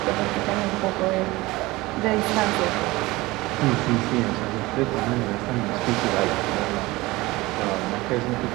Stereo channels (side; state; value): left; quieter; 20.4 dB